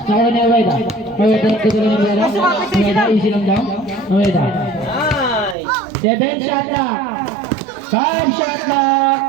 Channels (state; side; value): drops out; left; at 5.6 s